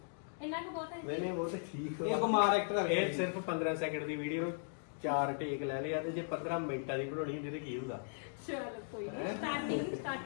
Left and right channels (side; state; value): right; silent; digital silence